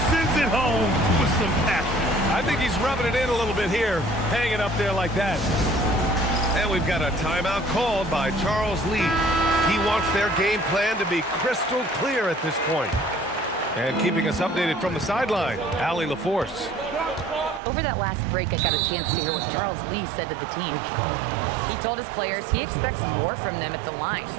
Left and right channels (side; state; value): left; drops out; at 17.6 s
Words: sends it home with some passion. I think he's rubbing it in a little bit here, hanging up there like that. And we've got a timeout called by Charles Lee. He wants their game plan to be crystal clear at this point. And keeping us updated from the sideline, Allie LaForce. Over that last break, I got a chance to hear what Charles Lee said to the team. He told his players he expects more from them at the line,